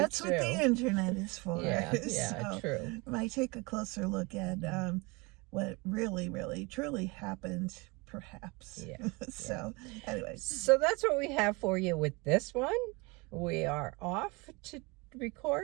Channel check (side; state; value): left; quieter; 26.7 dB